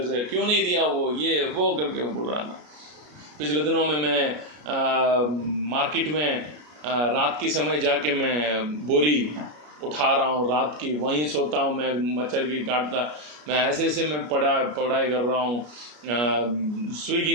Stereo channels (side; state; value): left; late; 33 ms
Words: से, क्यों नहीं दिया वो, ये वो करके वो बोल रहा था। पिछले दिनों में मैं मार्केट में रात के समय जाके मैं बोरी उठा रहा हूँ, रात की वहीं सोता हूँ, मैं मच्छर की काटता, मैं ऐसे मैं पढ़ाई कर रहा हूँ। स्विगी